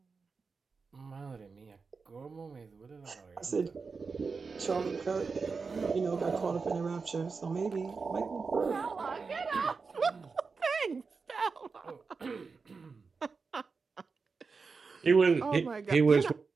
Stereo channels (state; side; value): quieter; left; 4.8 dB